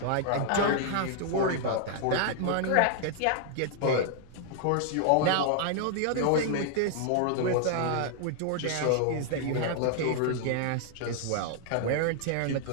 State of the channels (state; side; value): different; both; correlation 0.00